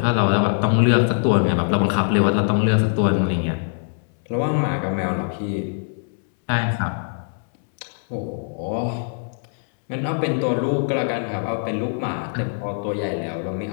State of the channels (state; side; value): silent; right; 64 dB below the other